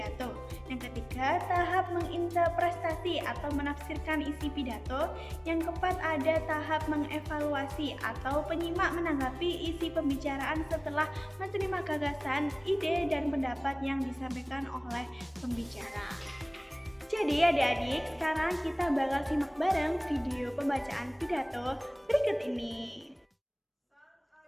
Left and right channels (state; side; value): identical; both; correlation 1.00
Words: Yang ketiga, tahap menginterpretasi atau menafsirkan isi pidato. Yang keempat, ada tahap mengevaluasi atau penyimak menanggapi isi pembicaraan setelah menerima gagasan, ide, dan pendapat yang disampaikan oleh pembicara. Jadi adik-adik, sekarang kita bakal simak bareng video pembacaan pidato berikut ini.